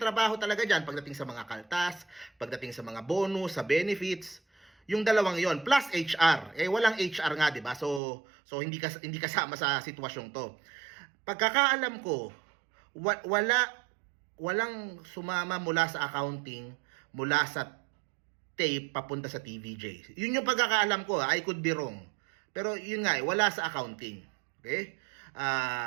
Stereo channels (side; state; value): left; drops out; at 8.0 s